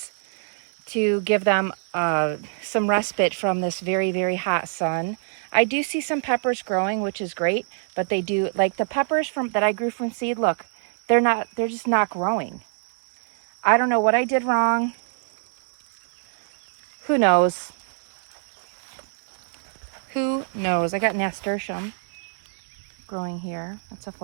to give them some respite from this very, very hot sun. I do see some peppers growing, which is great, but they do, like the peppers that I grew from seed, look, they're just not growing. I don't know what I did wrong. Who knows? Who knows? I got nasturtium growing here. That's a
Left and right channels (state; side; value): silent; left; digital silence